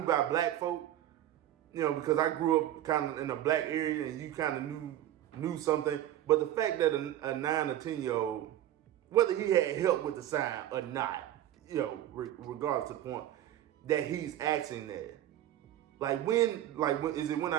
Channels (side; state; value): left; quieter; 12.6 dB